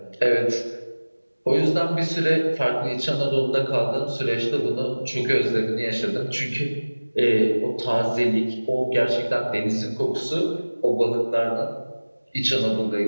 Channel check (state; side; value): inverted; both; correlation -1.00